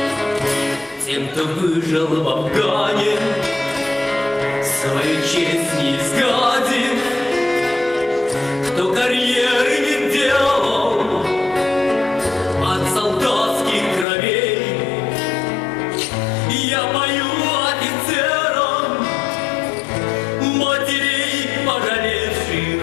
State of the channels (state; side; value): drops out; right; at 14.1 s